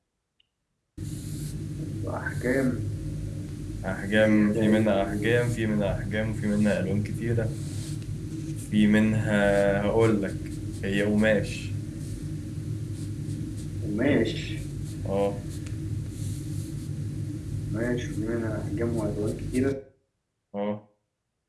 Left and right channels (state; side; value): identical; both; correlation 1.00